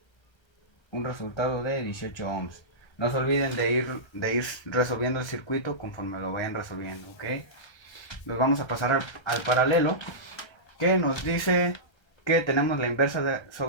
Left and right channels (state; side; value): late; right; 1.3 ms